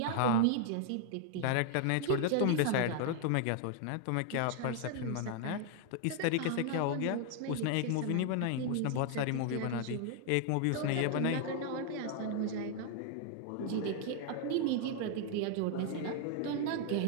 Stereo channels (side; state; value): both; different; correlation 0.00